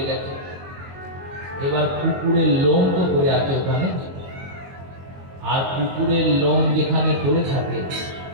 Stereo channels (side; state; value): left; late; 22 ms